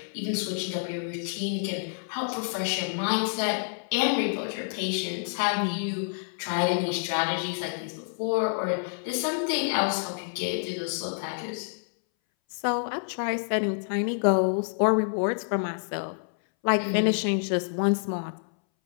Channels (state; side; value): silent; right; 59 dB below the other